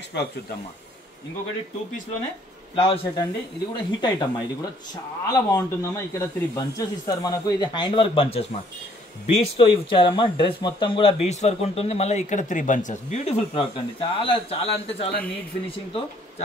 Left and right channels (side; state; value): both; normal; correlation 0.62